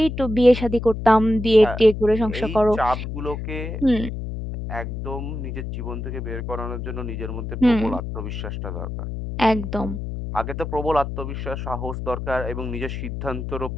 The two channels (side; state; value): left; noise; hum, 6 dB below the sound